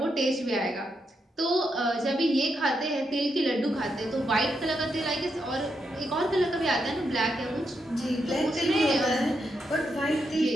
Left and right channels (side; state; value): both; normal; correlation 0.82